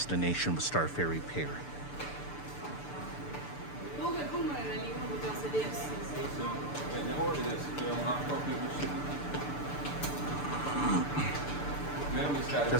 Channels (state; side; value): late; right; 6.8 ms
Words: was Star Ferry Pier.